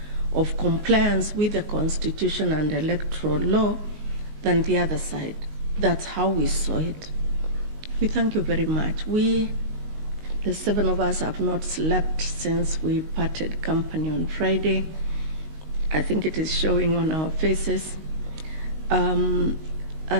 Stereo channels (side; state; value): left; late; 19 ms